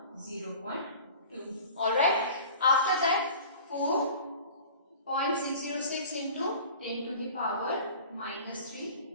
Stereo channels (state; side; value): inverted; both; correlation -0.42